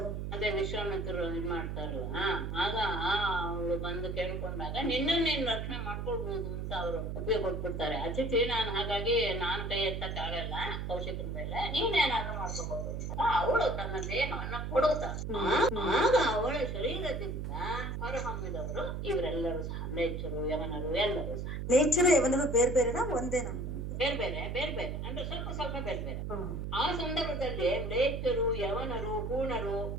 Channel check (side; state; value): right; noise; hum, 4 dB below the sound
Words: ಅದೇ ವಿಶ್ವಾಮಿತ್ರರು ಇದ್ ಮಾಡ್ತಾರಲ್ಲ, ಆಗ ಅವಳು ಬಂದು ಕೇಳ್ಕೊಂಡಾಗ ನಿನ್ನನ್ನು ನೀನ್ ರಕ್ಷಣೆ ಮಾಡ್ಕೊಳ್ಬಹುದು ಅಂತ ಅವರು ಒಪ್ಪಿಗೆ ಕೊಟ್ಬಿಡ್ತಾರೆ. ಅತಿಥಿ ನಾನು, ಹಾಗಾಗಿ ನಾನು ಕೈ ಎತ್ತಕ್ಕಾಗಲ್ಲ ಕೌಶಿಕರ ಮೇಲೆ, ನೀನೇನಾದ್ರೂ ಮಾಡ್ಕೊಬಹುದು ಅಂತ ಅವಳು ತನ್ನ ದೇಹವನ್ನ ಕೊಡುತ್ತಾರೆ. ಆಗ ಅವಳ ಶರೀರದಿಂದ ಹೊರಹೊಮ್ಮಿದವರು ಇವರೆಲ್ಲರೂ ಸಹ ನೇಚರು, ಯವನರು ಎಲ್ಲರೂ ಸಹ. ನೇಚರು ಯವನರು ಬೇರೆ ಬೇರೆನಾ ಒಂದೇ? ನಮ್ಮ ಬೇರೆ ಬೇರೆ ಅಂದ್ರೆ ಸ್ವಲ್ಪ ಬೇರೆ ಬೇರೆ. ಆ ಸಂದರ್ಭದಲ್ಲಿ ಲೇಚರು, ಯವನರು, ಹೂಣರು